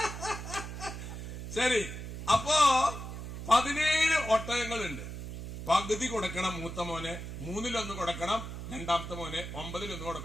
ശരി. അപ്പോ 17 ഒട്ടകങ്ങളുണ്ട്. പകുതി കൊടുക്കണം മൂത്ത മോനെ, 3/1 കൊടുക്കണം രണ്ടാമത്തെ മോനെ, 9/1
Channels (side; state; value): right; noise; hum, 8 dB below the sound